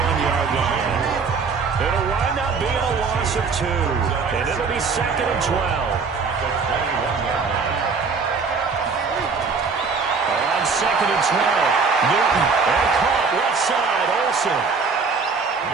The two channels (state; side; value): quieter; left; 4.9 dB